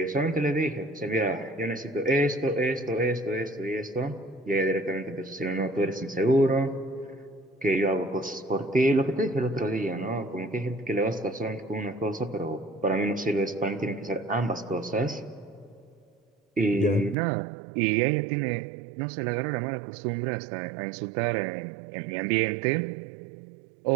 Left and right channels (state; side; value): drops out; left; at 17.2 s